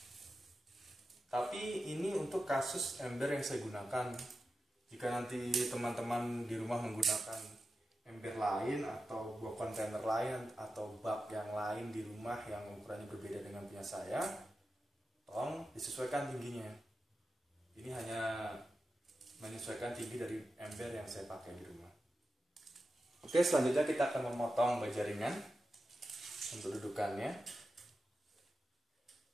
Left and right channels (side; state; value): both; normal; correlation 0.92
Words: Tapi ini untuk kasus ember yang saya gunakan. Jika nanti teman-teman di rumah menggunakan ember lain atau buah kontainer lain atau bak yang lain di rumah yang ukurannya berbeda dengan punya saya, tolong disesuaikan tingginya. Ini hanya menyesuaikan tinggi dari ember yang saya pakai di rumah. Oke, selanjutnya kita akan memotong bajaringan untuk dudukannya.